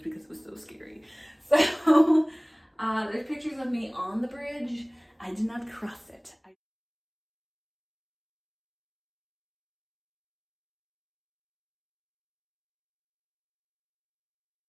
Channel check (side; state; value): both; identical; correlation 1.00